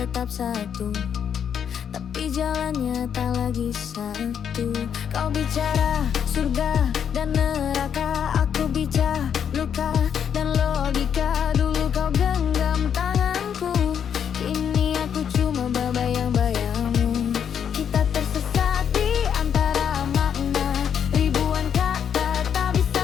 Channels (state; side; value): quieter; right; 8.2 dB